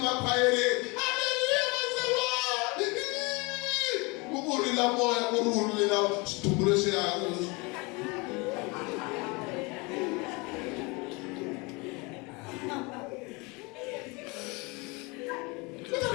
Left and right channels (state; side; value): quieter; right; 27.4 dB